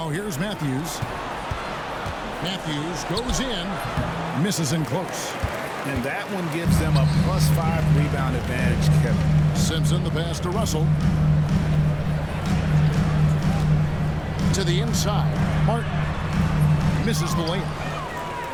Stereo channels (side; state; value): both; identical; correlation 1.00